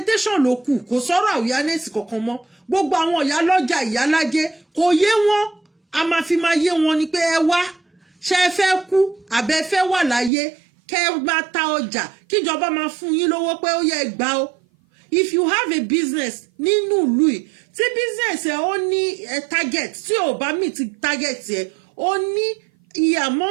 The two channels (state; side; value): drops out; left; at 10.3 s